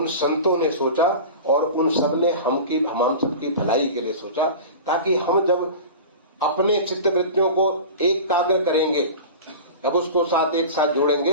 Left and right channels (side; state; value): both; inverted; correlation -0.33